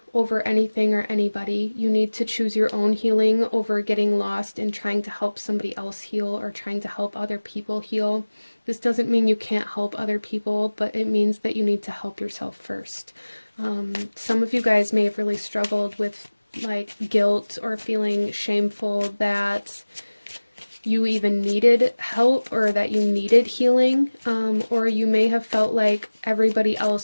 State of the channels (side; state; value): both; inverted; correlation -1.00